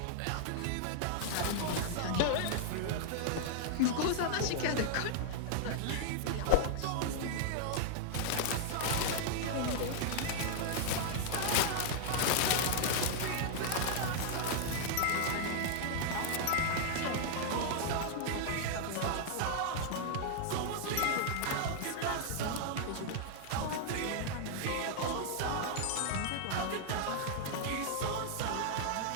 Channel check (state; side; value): different; both; correlation -0.01